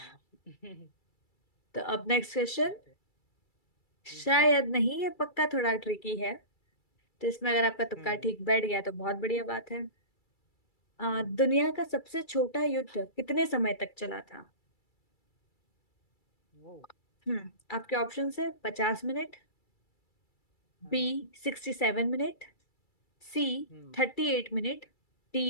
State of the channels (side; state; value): right; late; 2.3 ms